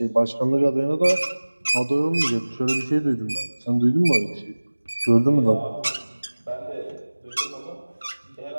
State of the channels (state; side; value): inverted; both; correlation -1.00